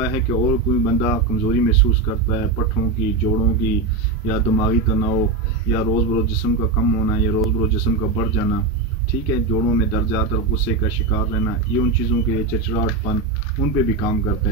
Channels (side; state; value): left; quieter; 3.6 dB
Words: है कि और कोई बंदा कमज़ोरी महसूस करता है, पट्ठों की, जोड़ों की, या दिमागी तनाव, या रोज़ बरोज़ जिस्म का कम होना, या रोज़ बरोज़ जिस्म का बढ़ जाना, ठीक है, जोड़ों में दर्द ज़्यादातर, गुस्से का शिकार रहना, ये उन चीज़ों के लिए, चिड़चिड़ाहटपन, उन पे भी काम करता